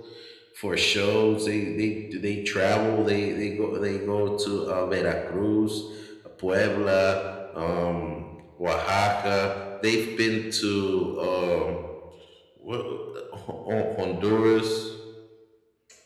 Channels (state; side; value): identical; both; correlation 1.00